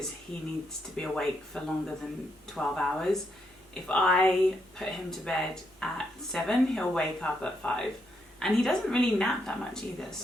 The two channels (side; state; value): both; normal; correlation 0.79